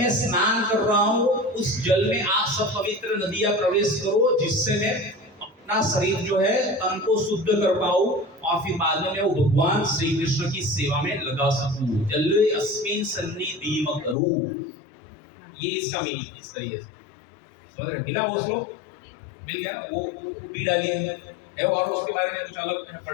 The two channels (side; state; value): right; drops out; at 14.2 s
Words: स्नान कर रहा हूं उस जल में आप सब पवित्र नदियां प्रवेश करो, जिससे मैं अपना शरीर जो है तन को शुद्ध कर पाऊं और फिर बाद में मैं वो भगवान श्री कृष्ण की सेवा में लगा सकूं। जले अस्मिन् सन्निधिं कुरु, ये इसका मीनिंग इस तरीके से समझ रहे। मिला वो श्लोक, मिल गया वो भी डालिए है, और उसके बारे में कुछ अलग